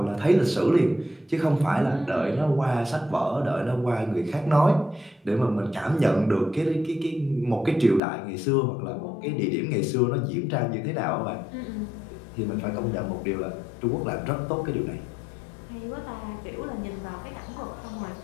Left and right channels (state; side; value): drops out; right; at 8.0 s